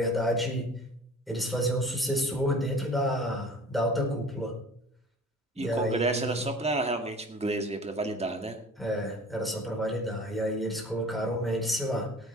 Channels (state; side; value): normal; both; correlation 0.44